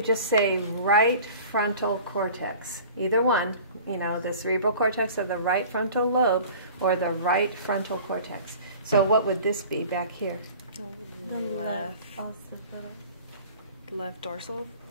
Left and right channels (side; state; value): both; inverted; correlation -0.43